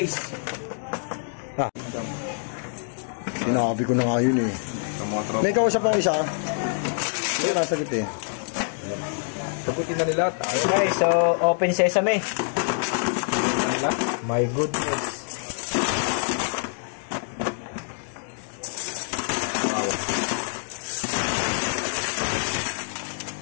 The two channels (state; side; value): silent; right; digital silence